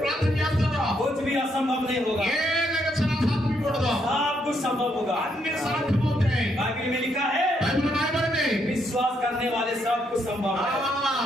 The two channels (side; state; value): both; normal; correlation 0.75